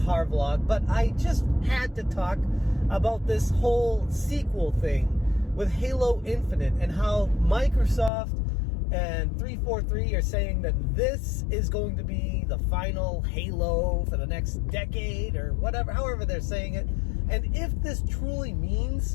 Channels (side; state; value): right; drops out; at 8.1 s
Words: vlog, but I just had to talk about this whole sequel thing with Halo Infinite and how Microsoft and 343 are saying that this is going to be the final Halo for the next decade or whatever, however they're saying it. And if this truly